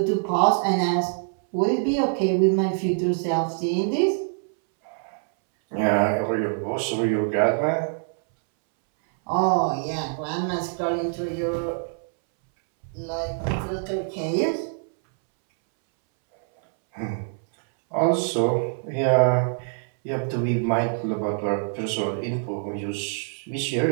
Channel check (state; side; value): silent; left; 62 dB below the other